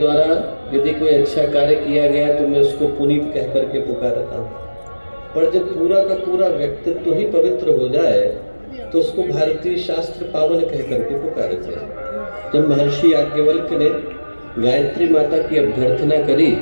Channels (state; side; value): inverted; both; correlation -1.00